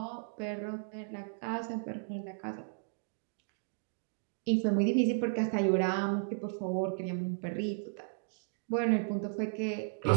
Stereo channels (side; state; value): left; silent; digital silence